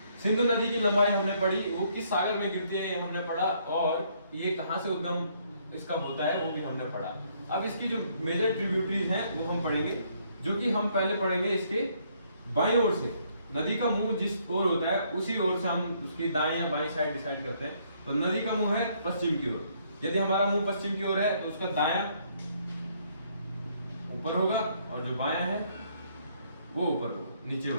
सिंधु नदी की लंबाई हमने पढ़ी, वो किस सागर में गिरती है ये हमने पढ़ा, और ये कहां से उद्गम इसका होता है वो भी हमने पढ़ा। अब इसकी जो मेजर ट्रिब्यूटरीज हैं वो हम पढ़ेंगे, जो कि हम पहले पढ़ेंगे इसके बाईं ओर से। नदी का मुंह जिस ओर होता है उसी ओर से हम उसकी दाएं या बाईं साइड डिसाइड करते हैं। तो नदी का मुंह है पश्चिम की ओर, यदि हमारा मुंह पश्चिम की ओर है तो उसका दायां ऊपर होगा और जो बायां है वो ऊपर होगा, नीचे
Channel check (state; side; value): inverted; both; correlation -0.68